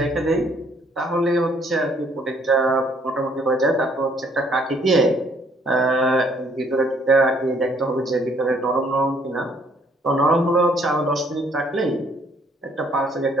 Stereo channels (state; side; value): normal; both; correlation 0.64